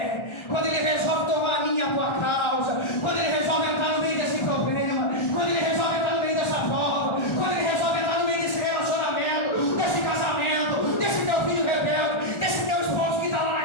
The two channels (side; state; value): right; late; 1.4 ms